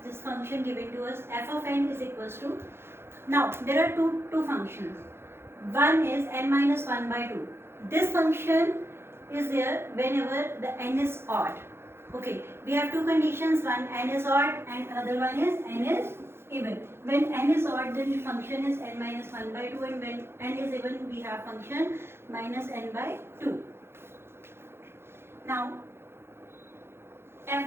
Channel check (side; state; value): left; late; 0.12 ms